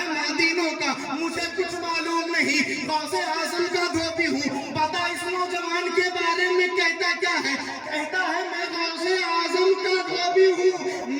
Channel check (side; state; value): both; identical; correlation 1.00